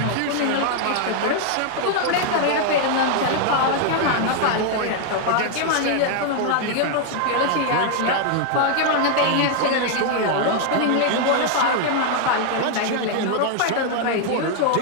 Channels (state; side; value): different; both; correlation 0.00